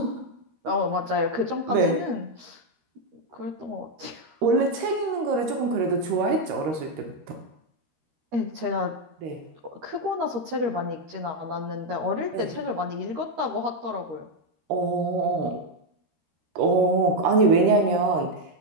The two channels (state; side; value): late; left; 13 ms